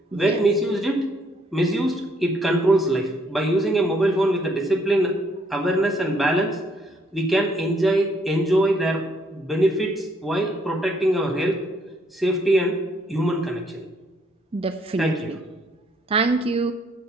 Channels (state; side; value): normal; both; correlation 0.68